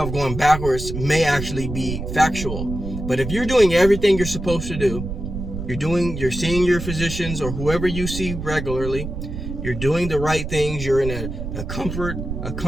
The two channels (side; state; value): right; noise; rumble, 6 dB below the sound